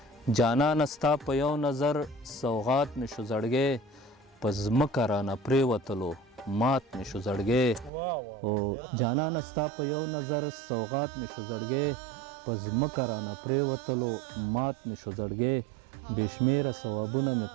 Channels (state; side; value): drops out; left; at 7.9 s